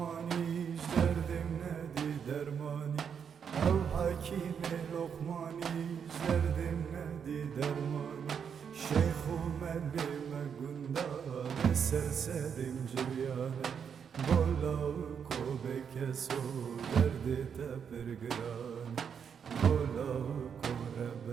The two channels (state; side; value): quieter; left; 7.2 dB